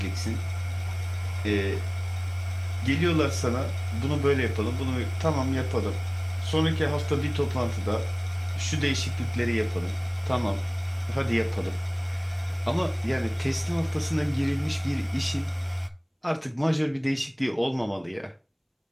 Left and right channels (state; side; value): identical; both; correlation 1.00